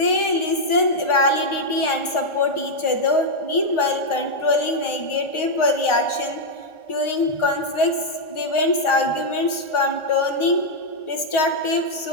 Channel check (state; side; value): late; right; 1.4 ms